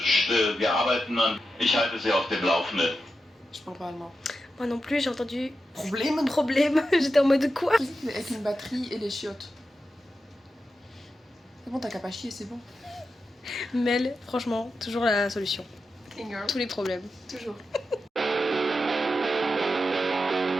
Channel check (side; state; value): both; normal; correlation 0.89